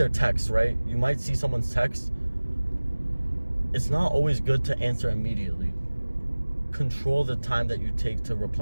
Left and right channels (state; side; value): inverted; both; correlation -1.00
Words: text, right? You might see someone's text. It's not always good to answer immediately. Control the time that you take to